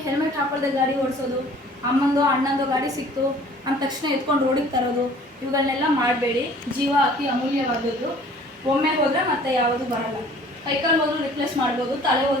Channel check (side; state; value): both; normal; correlation 0.51